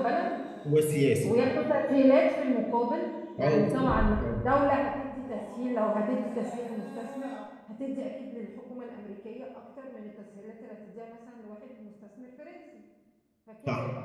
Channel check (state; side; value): identical; both; correlation 1.00